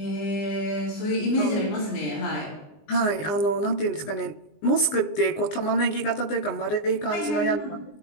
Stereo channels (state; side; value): late; right; 20 ms